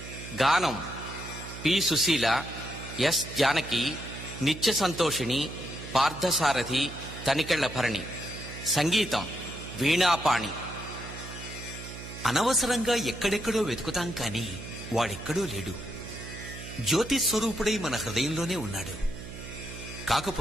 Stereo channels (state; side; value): noise; right; hum, 11 dB below the sound